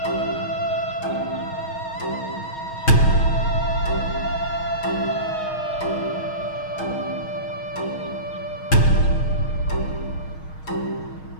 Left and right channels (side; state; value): right; late; 6.4 ms